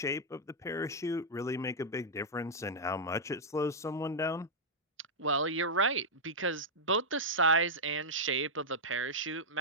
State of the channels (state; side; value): normal; both; correlation -0.06